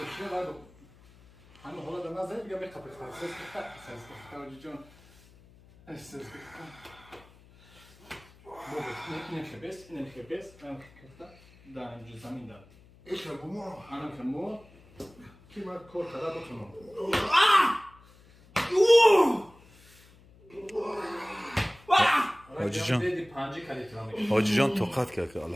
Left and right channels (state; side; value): noise; left; hum, 25 dB below the sound